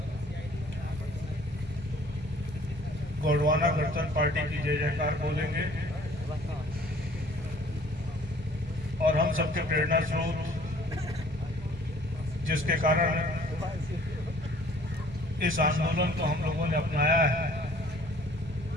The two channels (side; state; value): both; normal; correlation 0.55